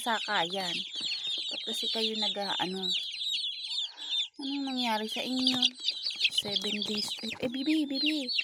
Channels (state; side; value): identical; both; correlation 1.00